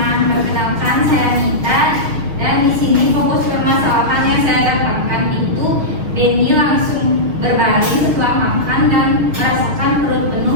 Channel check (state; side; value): late; left; 6.4 ms